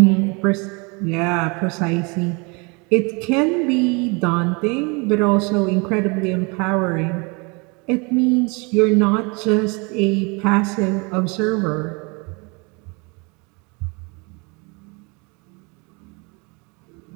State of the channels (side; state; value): left; quieter; 30.0 dB